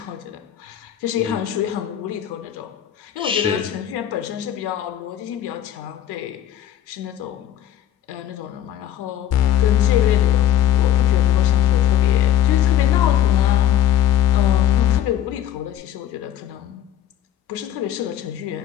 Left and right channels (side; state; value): right; quieter; 11.1 dB